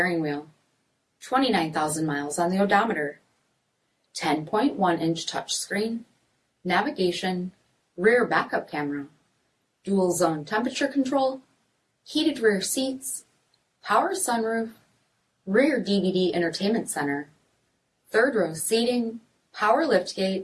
wheel, 29,000 miles on the odometer, 10.1-inch touchscreen, navigation, rear backup camera, dual zone temperature control, heated rear seats, power sunroof, rear DVD entertainment center, third row seating, power liftgate,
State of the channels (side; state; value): both; identical; correlation 1.00